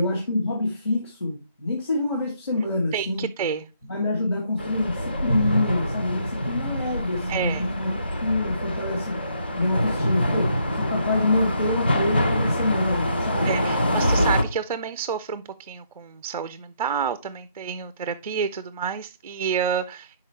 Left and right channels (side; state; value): both; inverted; correlation -0.70